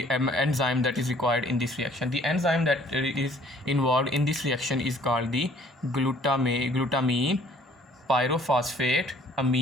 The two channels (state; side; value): normal; both; correlation 0.57